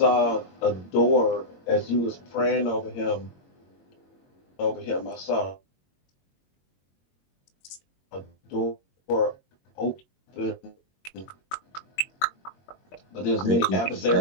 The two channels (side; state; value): right; late; 22 ms